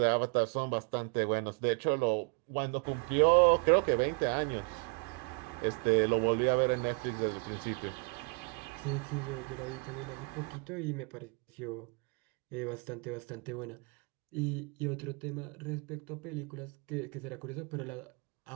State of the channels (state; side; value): quieter; left; 33.5 dB